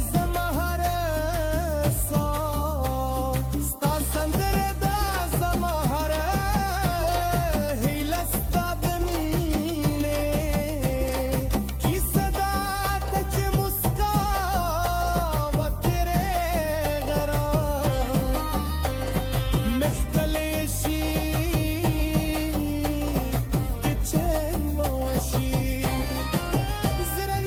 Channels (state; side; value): identical; both; correlation 1.00